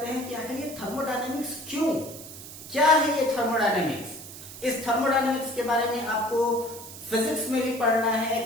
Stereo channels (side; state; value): right; noise; hiss, 14 dB below the sound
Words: हैं कि आखिर ये थर्मोडायनेमिक्स क्यों, क्या है ये थर्मोडायनेमिक्स। इस थर्मोडायनेमिक्स के बारे में आपको फिजिक्स में भी पढ़ना है,